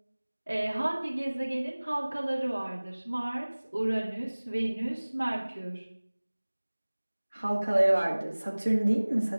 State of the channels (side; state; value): both; inverted; correlation -1.00